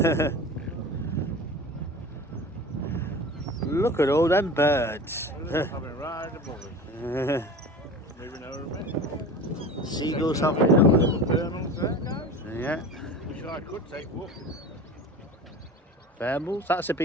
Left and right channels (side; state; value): both; normal; correlation 0.35